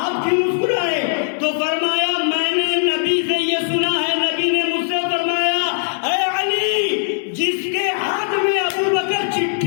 کیوں مسکرائے؟ تو فرمایا میں نے نبی سے یہ سنا ہے، نبی نے مجھ سے فرمایا اے علی جس کے ہاتھ میں ابو بکر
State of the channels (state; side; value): silent; right; digital silence